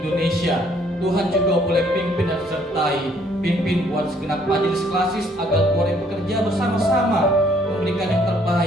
Indonesia. Tuhan juga boleh pimpin dan sertai, pimpin buat segenap majelis klasis agar boleh bekerja bersama-sama memberikan yang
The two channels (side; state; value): both; normal; correlation 0.64